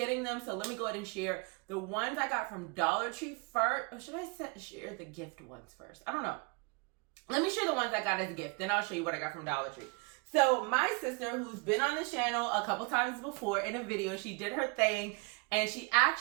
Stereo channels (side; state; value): left; quieter; 30.8 dB